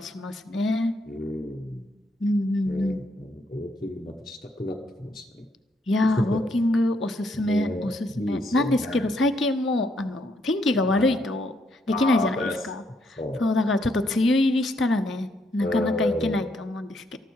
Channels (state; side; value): normal; both; correlation 0.74